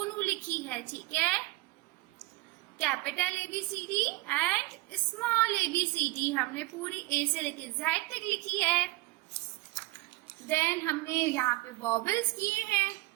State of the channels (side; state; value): left; quieter; 21.2 dB